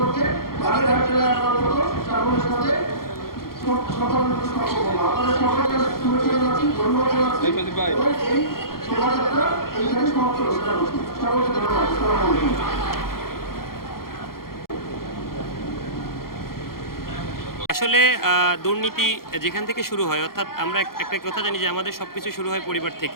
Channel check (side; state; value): right; late; 0.93 ms